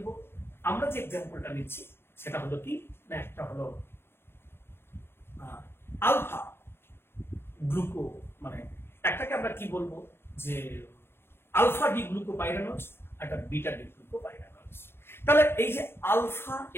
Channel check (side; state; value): right; late; 0.11 ms